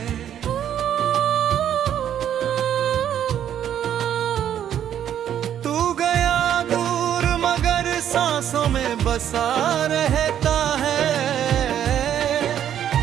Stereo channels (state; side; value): quieter; left; 10.1 dB